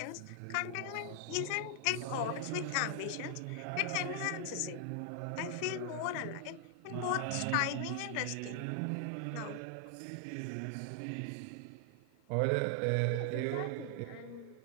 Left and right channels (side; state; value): both; different; correlation 0.00